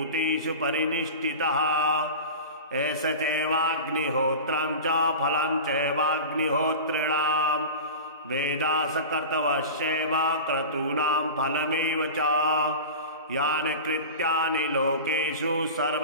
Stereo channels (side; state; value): both; inverted; correlation -0.31